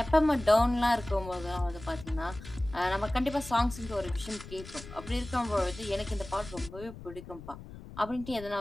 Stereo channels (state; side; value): noise; left; rumble, 14 dB below the sound